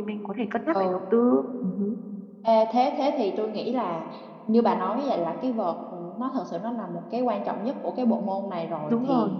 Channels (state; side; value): identical; both; correlation 1.00